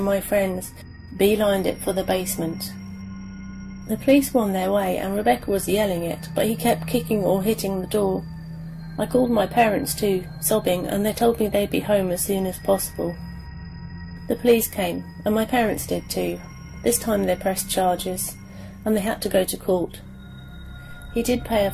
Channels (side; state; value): both; identical; correlation 1.00